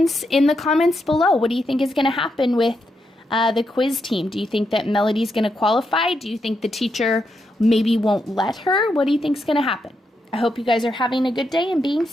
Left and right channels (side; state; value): both; normal; correlation 0.82